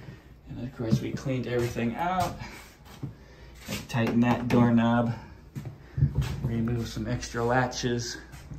And of course we cleaned everything out. I tightened that doorknob, removed some extra latches.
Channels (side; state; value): both; identical; correlation 1.00